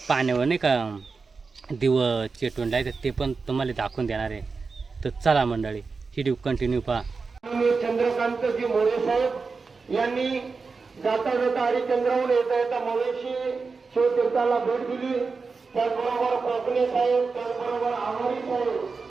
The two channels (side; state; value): left; quieter; 4.6 dB